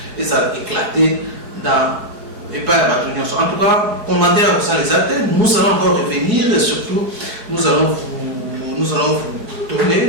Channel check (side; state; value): left; late; 4.7 ms